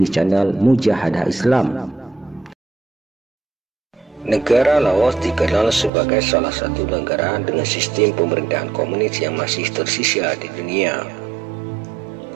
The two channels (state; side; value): drops out; left; at 5.9 s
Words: channel Mujahadah Islam. Negara Laos dikenal sebagai salah satu negara dengan sistem pemerintahan komunis yang masih tersisa di dunia.